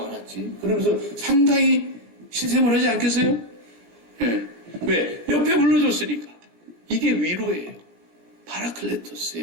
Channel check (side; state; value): left; late; 17 ms